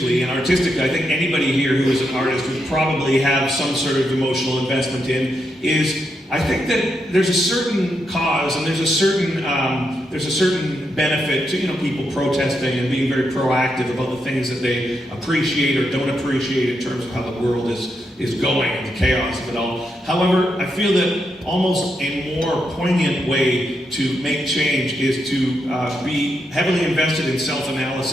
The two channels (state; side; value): normal; both; correlation 0.82